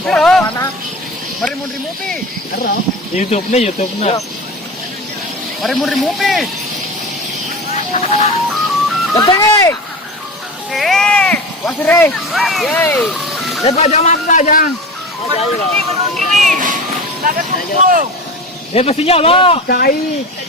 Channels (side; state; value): both; normal; correlation 0.30